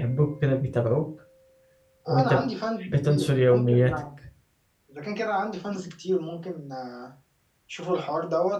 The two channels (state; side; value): identical; both; correlation 1.00